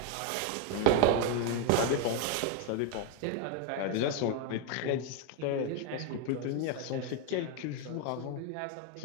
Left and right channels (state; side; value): different; both; correlation 0.01